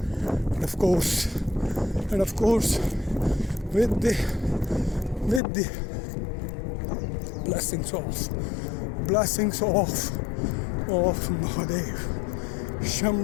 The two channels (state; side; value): drops out; right; at 5.4 s